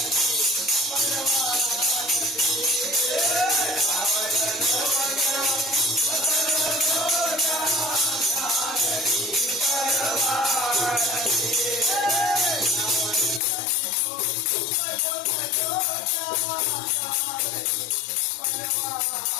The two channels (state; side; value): drops out; right; at 13.4 s